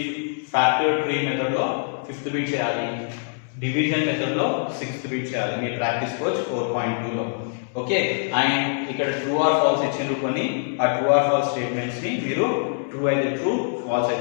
ఫ్యాక్టర్ ట్రీ మెథడ్ లో ఫిఫ్త్ బిట్ చేయాలి. డివిజన్ మెథడ్ లో సిక్స్త్ బిట్ చేయాలి. మీ ప్రాక్టీస్ కోచ్ 4.2 లో. ఓకే, అండ్ ఇక్కడ ట్రూ ఆర్ ఫాల్స్ ఇచ్చిండ్రు కొన్ని. ఆ ట్రూ ఆర్ ఫాల్స్ స్టేట్మెంట్స్ ని మీరు ట్రూ అయితే ట్రూ, ఫాల్స్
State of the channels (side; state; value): right; silent; digital silence